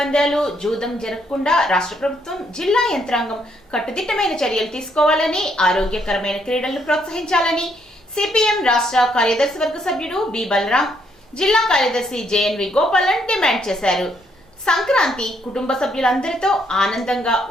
జూదం జరగకుండా రాష్ట్ర ప్రభుత్వం జిల్లా యంత్రాంగం కట్టుదిట్టమైన చర్యలు తీసుకోవాలని, ఆరోగ్యకరమైన క్రీడలను ప్రోత్సహించాలని సిపిఎం రాష్ట్ర కార్యదర్శి వర్గ సభ్యుడు బి బలరాం, జిల్లా కార్యదర్శి జేఎన్వి గోపాలన్ డిమాండ్ చేశారు। సంక్రాంతి కుటుంబ సభ్యులందరితో ఆనందంగా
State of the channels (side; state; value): both; normal; correlation 0.72